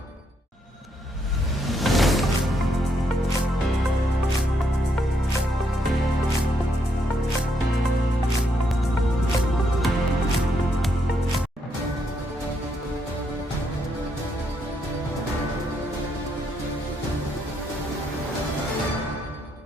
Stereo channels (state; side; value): normal; both; correlation 0.76